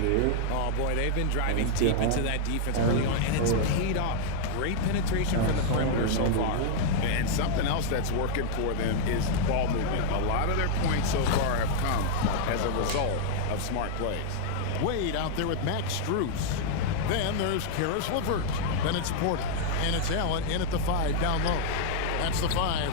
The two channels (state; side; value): different; both; correlation -0.01